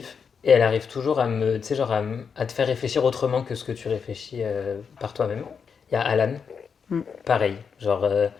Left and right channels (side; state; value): right; quieter; 6.3 dB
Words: Et elle arrive toujours tu sais, genre à te faire réfléchir autrement que ce que tu réfléchis par toi-même. Il y a Alan, Mm. pareil, genre,